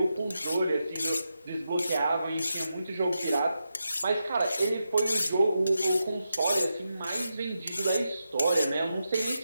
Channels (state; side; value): inverted; both; correlation -0.87